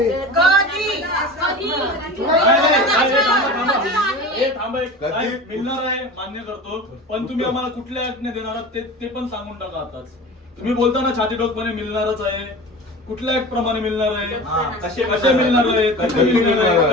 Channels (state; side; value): normal; both; correlation 0.34